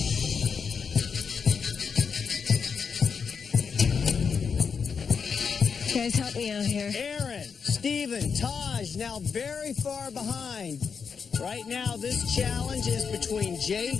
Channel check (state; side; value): quieter; right; 6.0 dB